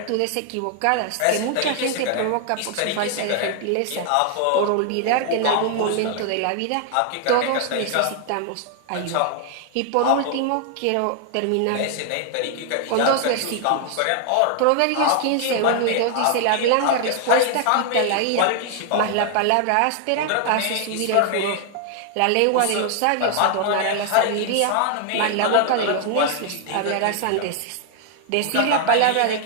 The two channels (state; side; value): different; both; correlation 0.00